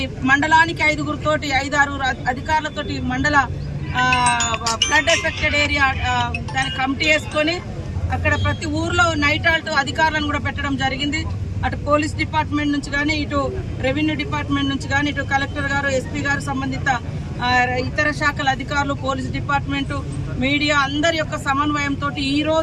మండలానికి 5-6 అధికారులతోటి మండల ఫ్లడ్ ఎఫెక్టెడ్ ఏరియా దాని కమిటీ వేసుకొని అక్కడ ప్రతి ఊర్లో నైట్ ఆల్ట్ అధికారులను కూడా పెట్టడం జరిగింది। అటు పోలీస్ డిపార్ట్మెంట్ నుంచి కానీ, ఇటు రెవెన్యూ డిపార్ట్మెంట్ నుంచి కానీ, ఇటు కలెక్టర్ గారు, ఎస్పీ గారు, సంబంధిత ఇతర శాఖల అధికారులు, పోలీస్ డిపార్ట్మెంటు, మీడియా అందరి యొక్క సమన్వయంతో ఈ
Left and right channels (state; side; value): identical; both; correlation 1.00